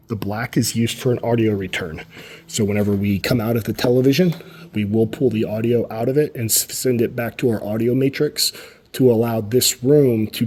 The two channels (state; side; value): identical; both; correlation 1.00